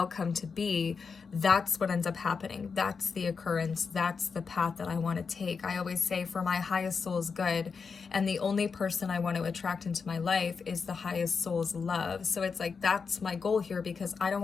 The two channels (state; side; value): quieter; right; 5.4 dB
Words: to be, that's what ends up happening. That's the occurrence. That's the path that I want to take. I always say, for my highest soul's good, and the only person I want to attract into my life is the highest soul's love. So it's like, that's my goal here, because I don't